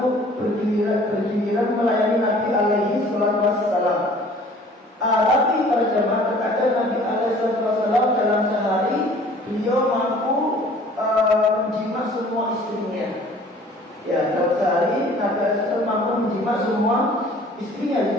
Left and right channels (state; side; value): normal; both; correlation 0.51